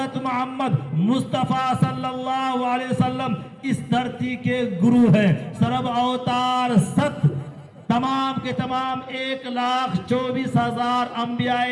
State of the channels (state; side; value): identical; both; correlation 1.00